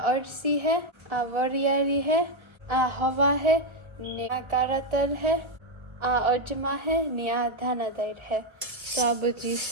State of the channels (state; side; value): late; left; 1.3 ms